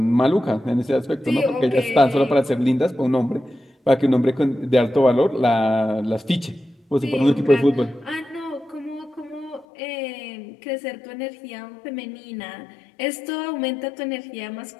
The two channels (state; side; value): drops out; right; at 9.7 s